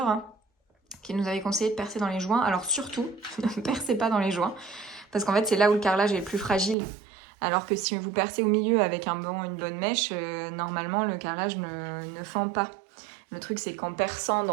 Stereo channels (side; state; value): left; drops out; at 6.8 s